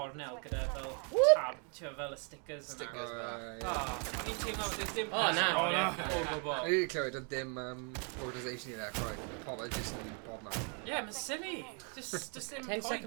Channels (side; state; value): left; quieter; 38.5 dB